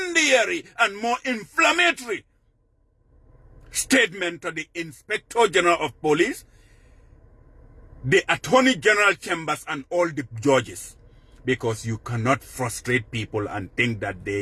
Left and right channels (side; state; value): both; identical; correlation 1.00